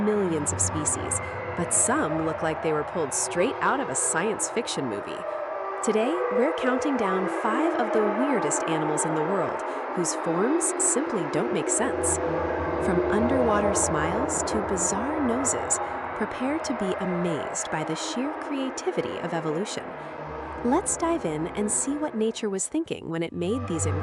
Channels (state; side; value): identical; both; correlation 1.00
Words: of species, but some look like they were pulled straight out of a science fiction movie. Today, we're counting down 5 of the weirdest animals in the world, whose forms simply don't make sense. From underwater smiles to bizarre noses, prepare to be amazed by the sheer creativity of evolution. Let's dive in and see what nature was thinking when it made these